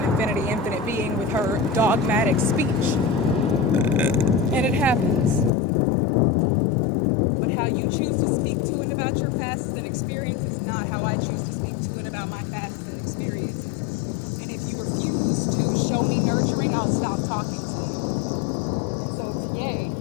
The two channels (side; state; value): right; drops out; at 5.5 s